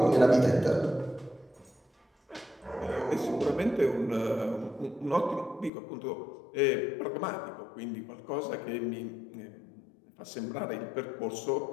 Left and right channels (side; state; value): right; drops out; at 5.7 s